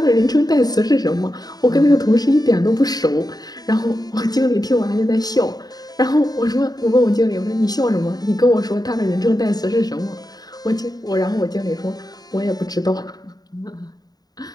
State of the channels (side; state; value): right; late; 0.19 ms